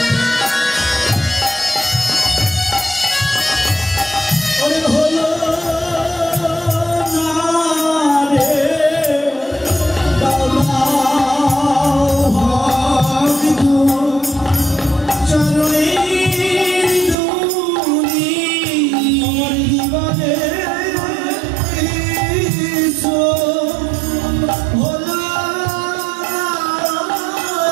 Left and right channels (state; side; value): drops out; left; at 17.2 s